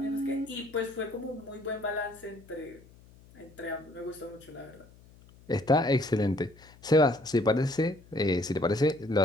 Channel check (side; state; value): left; noise; hum, 25 dB below the sound